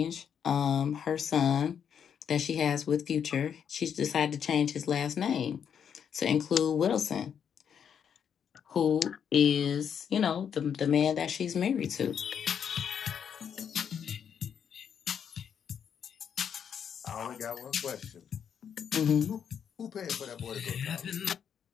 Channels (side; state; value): right; quieter; 7.9 dB